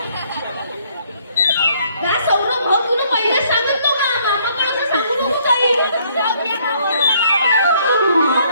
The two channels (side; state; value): both; inverted; correlation -0.65